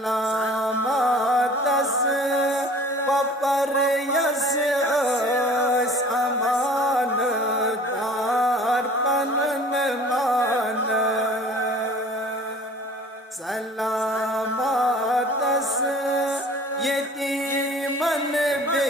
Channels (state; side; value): normal; both; correlation 0.47